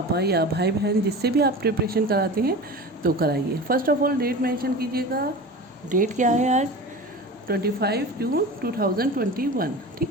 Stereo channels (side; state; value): both; normal; correlation 0.33